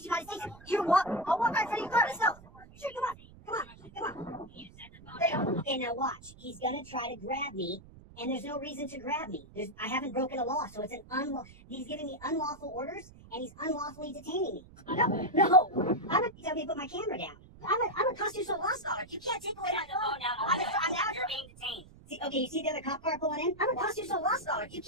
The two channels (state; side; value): noise; right; rumble, 21 dB below the sound